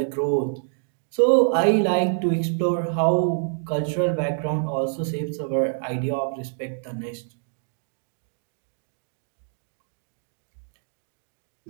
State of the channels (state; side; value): silent; left; digital silence